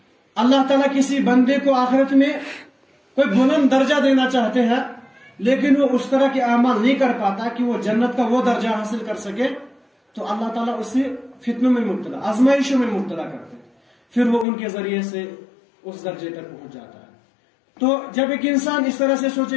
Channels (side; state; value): right; drops out; at 14.5 s